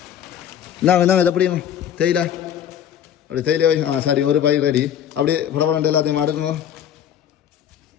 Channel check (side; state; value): right; quieter; 9.6 dB